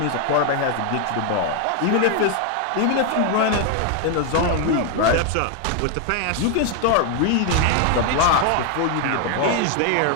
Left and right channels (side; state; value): both; different; correlation 0.01